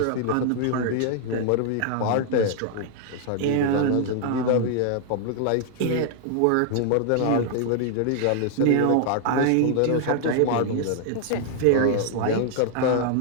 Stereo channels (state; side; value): different; both; correlation 0.00